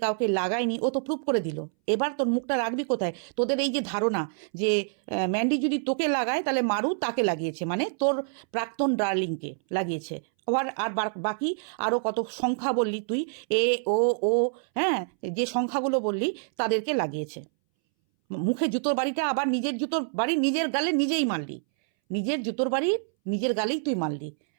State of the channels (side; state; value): left; silent; 60 dB below the other